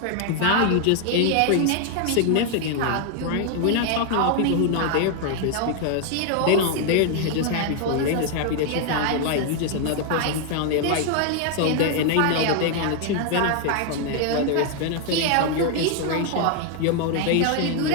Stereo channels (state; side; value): different; both; correlation 0.00